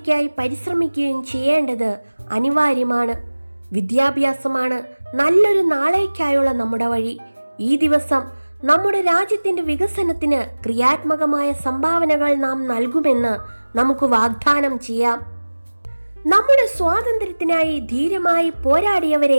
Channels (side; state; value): both; inverted; correlation -1.00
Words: പരിശ്രമിക്കുകയും ചെയ്യേണ്ടത് അനിവാര്യമാണ്. വിദ്യാഭ്യാസമാണ് നല്ലൊരു നാളേക്കായുള്ള നമ്മുടെ വഴി. ഈ ദിവസം നമ്മുടെ രാജ്യത്തിൻ്റെ വികസനത്തിന് ക്രിയാത്മകമായ സംഭാവനകൾ നാം നൽകുമെന്ന് നമുക്ക് വാഗ്ദാനം ചെയ്യാം. നമ്മുടെ സ്വാതന്ത്ര്യത്തിനായി ധീരമായി